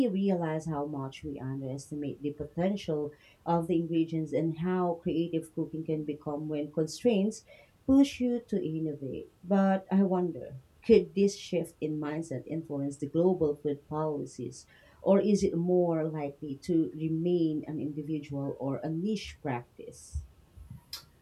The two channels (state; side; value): identical; both; correlation 1.00